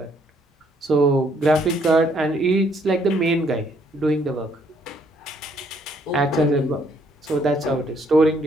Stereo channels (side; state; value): both; normal; correlation 0.67